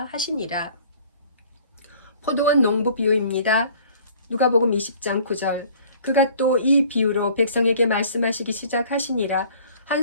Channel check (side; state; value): both; inverted; correlation -0.52